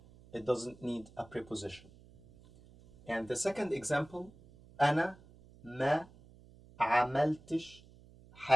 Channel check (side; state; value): right; noise; hum, 24 dB below the sound